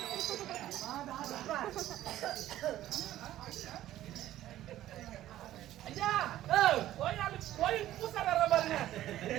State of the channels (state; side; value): quieter; left; 13.6 dB